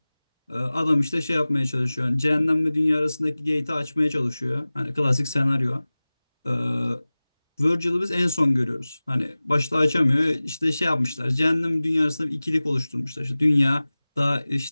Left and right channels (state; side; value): inverted; both; correlation -0.98